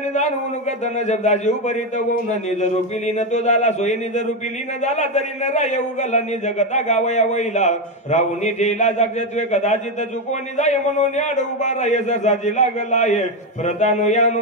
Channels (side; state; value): both; normal; correlation 0.09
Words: जाणून कथन शब्दाची उपरित होऊन निज रूपिली न तो झाला सोयी निज रूपिली न झाला तरी न राय उगला निज कथा गावया वैला राहून ठेला जागत्वे कदाचित चुकवणी जाय म्हणून आड उभा राय सरसाची लागला आहे प्रतानो यानु